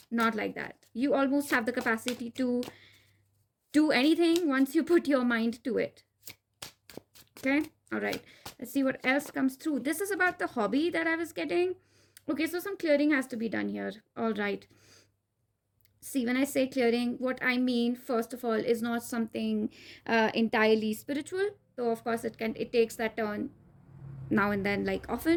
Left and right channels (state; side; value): identical; both; correlation 1.00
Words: not like that. You almost have the capacity to do anything once you put your mind to it. Okay, all right. Let's see what else comes through. This is about the hobby that I was getting. Okay, so some clearing has to be done here. All right. See, when I say clearing, what I mean, first of all, is not something entirely spiritual. Though, of course, it takes that turn now and then, like